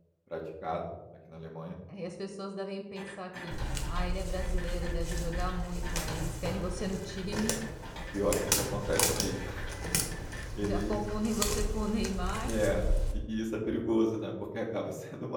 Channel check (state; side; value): identical; both; correlation 1.00